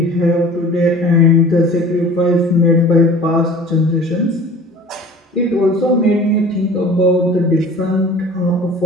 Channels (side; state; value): both; normal; correlation 0.44